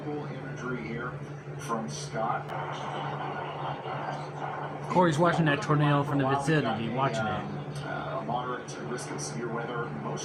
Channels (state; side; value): identical; both; correlation 1.00